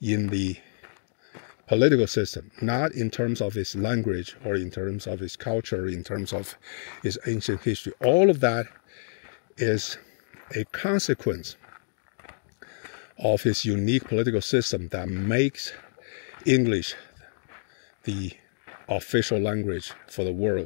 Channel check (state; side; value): silent; right; 60 dB below the other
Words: in the political system, not in terms of its language or in terms of its culture, in terms of its ancient history. All of that is a consequence of its unique political system that makes English the official language for the